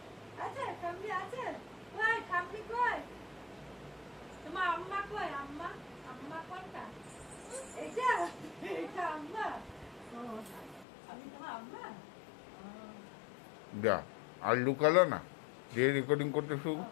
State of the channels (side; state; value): right; drops out; at 10.9 s